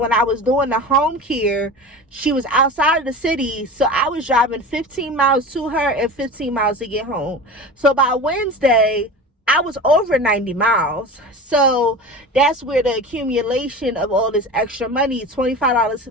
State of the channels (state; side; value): normal; both; correlation 0.32